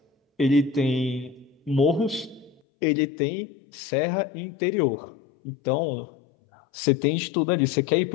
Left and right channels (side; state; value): right; drops out; at 2.6 s